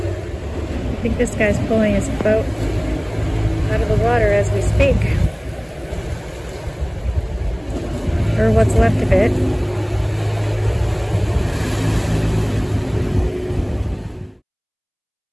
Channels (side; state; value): both; identical; correlation 1.00